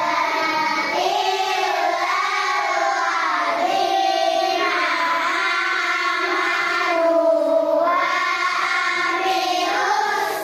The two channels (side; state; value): both; identical; correlation 1.00